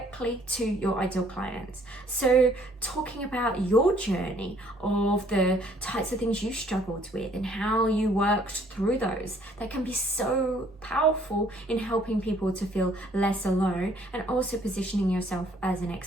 to your ideal clients. So talking about your journey of the types of things you struggled with and how you worked through those, that can be so powerful in helping people to feel less alone, and also positioning yourself as an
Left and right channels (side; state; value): both; normal; correlation 0.61